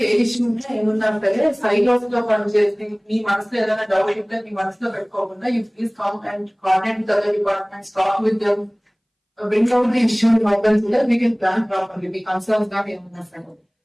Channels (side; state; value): both; identical; correlation 1.00